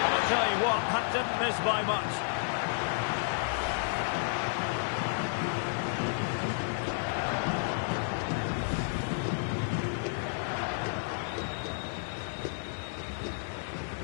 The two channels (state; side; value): silent; right; digital silence